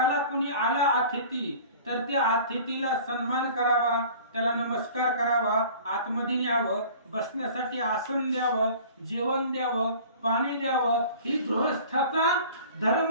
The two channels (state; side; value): inverted; both; correlation -0.45